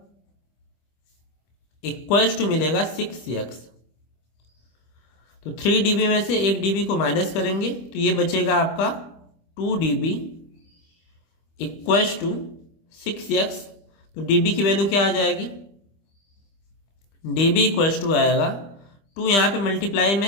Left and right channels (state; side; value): late; right; 25 ms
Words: इक्वल्स टू मिलेगा 6x। तो 3DB में से 1DB को माइनस करेंगे तो ये बचेगा आपका 2DB इक्वल्स टू 6x। तो DB की वैल्यू क्या आ जाएगी, DB इक्वल्स टू आएगा 2, यहाँ पे मल्टीप्लाई में